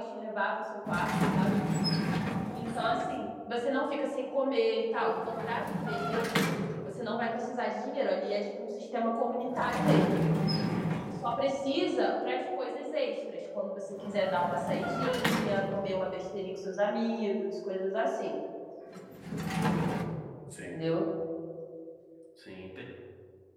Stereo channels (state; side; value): identical; both; correlation 1.00